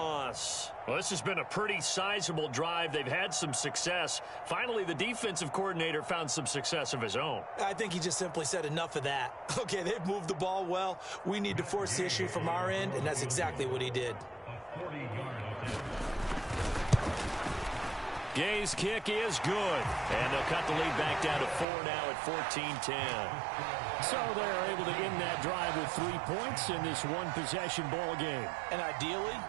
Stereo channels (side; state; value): left; drops out; at 21.7 s